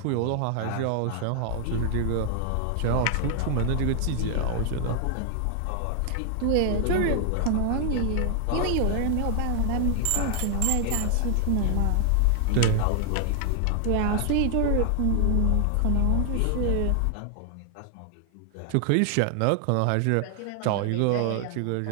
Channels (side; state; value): both; different; correlation 0.00